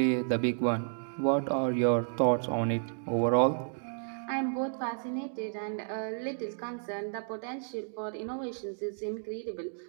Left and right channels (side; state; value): left; silent; digital silence